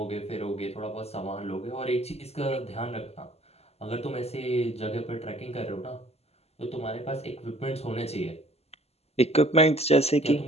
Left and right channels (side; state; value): right; late; 0.30 ms